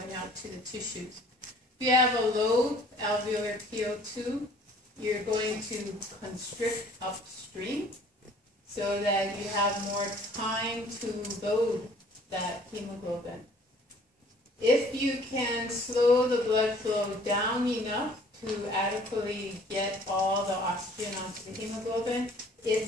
out to the tissues. If you have a low alveolar PO2, you're going to constrict upstream so that you have more time to load that hemoglobin. If you can slow the blood flow down enough to adequately get all the oxygen onto the hemoglobin,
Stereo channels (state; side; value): normal; both; correlation 0.54